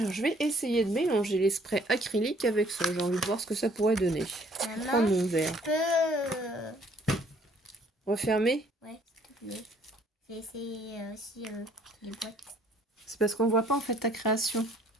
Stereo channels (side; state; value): both; normal; correlation 0.61